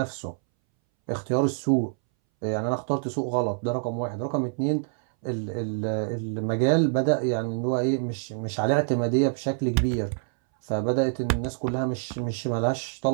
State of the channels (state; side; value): silent; left; 61 dB below the other